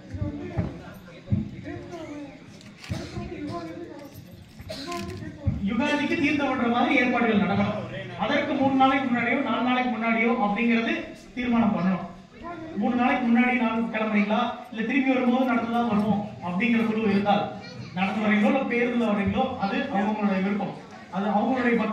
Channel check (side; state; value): both; identical; correlation 1.00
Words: யுகாதிக்கு தீர்த்தம் பண்ற மாதிரி ஏற்பாடுகள் நடக்கணும். அதற்கு 3 நாளைக்கு முன்னாடியோ 4 நாளைக்கு முன்னாடியோ அப்படிங்கிறது தீர்மானம் பண்ணணும். 3 நாளைக்கு முன்னாடி நாள் கிளம்புறீங்களா இல்ல திரும்பி வரும்போது நடந்துதான் வருவோம் அப்படிங்கிற குழு இருந்தால் நடந்து வரீங்களோ இல்ல பேருந்துல வரீங்களோ அது அவங்களுடைய விருப்பம். அது அவங்களுடைய